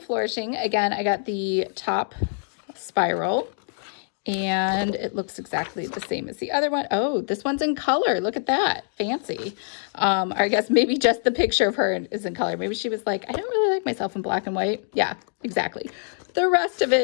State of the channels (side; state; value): right; silent; digital silence